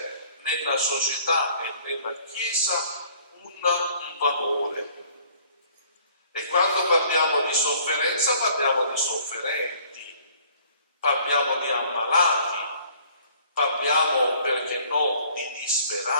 nella società e nella Chiesa un valore. E quando parliamo di sofferenza parliamo di sofferenti, parliamo di ammalati, parliamo, perché no, di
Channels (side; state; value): both; inverted; correlation -0.56